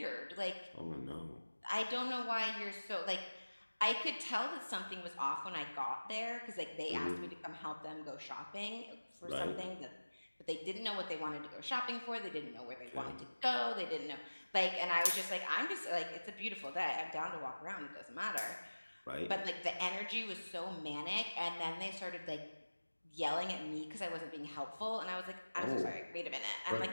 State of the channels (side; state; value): both; inverted; correlation -1.00